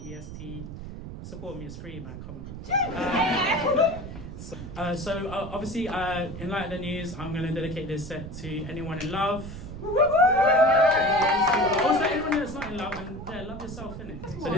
EST. Support me, it's free, man. Come on. Obviously, in light of the news, I'm going to dedicate this set to anyone in love. Also, anyone that's not in love, and love yourself, innit? So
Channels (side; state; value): right; noise; rumble, 10 dB below the sound